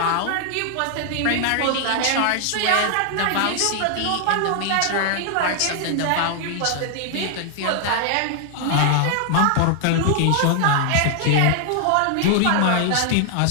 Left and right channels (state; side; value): different; both; correlation 0.00